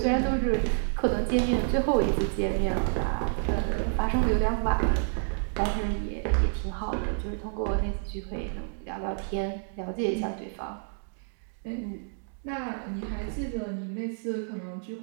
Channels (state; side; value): silent; left; digital silence